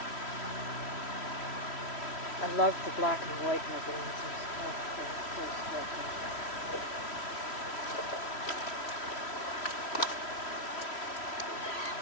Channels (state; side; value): late; right; 3.1 ms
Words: I love the black and white mergansers. Oh, they're so striking.